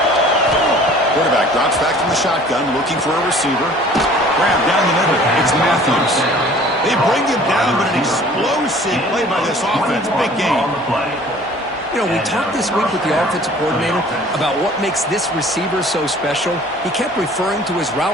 Quarterback drops back from the shotgun, looking for a receiver. Grab down the middle. It's Matthews. They bring him down, but an explosive play by this offense. Big game. You know, we talked this week with the offensive coordinator about what makes this receiver so special. He kept referring to his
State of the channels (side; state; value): both; normal; correlation 0.50